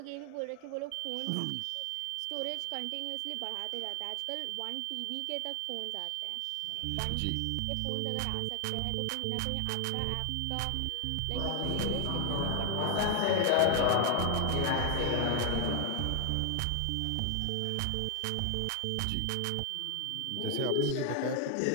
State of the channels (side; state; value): both; different; correlation 0.00